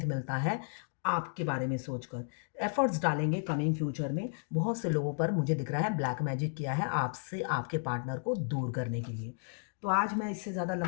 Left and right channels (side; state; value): right; silent; digital silence